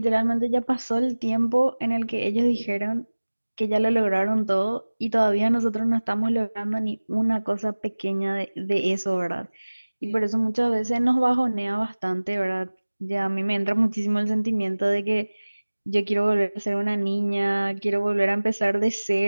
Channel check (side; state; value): both; inverted; correlation -1.00